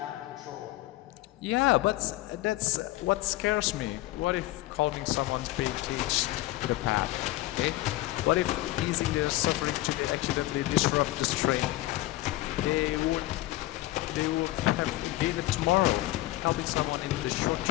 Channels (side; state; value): right; quieter; 17.3 dB